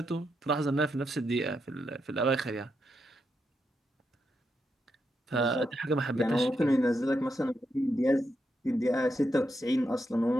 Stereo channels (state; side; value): normal; both; correlation 0.83